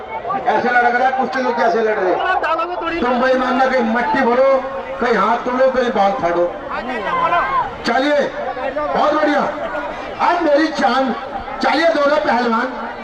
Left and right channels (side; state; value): both; identical; correlation 1.00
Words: ऐसे लड़ रहा है कुश्ती, तो कैसे लड़ रहे? तुम बेईमान ना, कहीं मट्टी भरो, कहीं हाथ तोड़ो, कहीं बाल फाड़ो। चलिए, बहुत बढ़िया, आज मेरी जान। चलिए, दोनों पहलवान